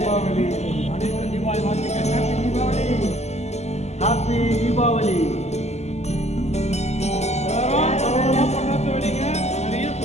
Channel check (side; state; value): right; late; 0.32 ms